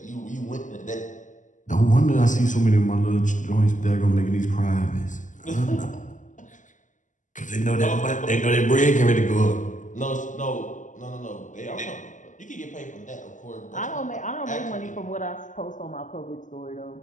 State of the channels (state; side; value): late; right; 0.37 ms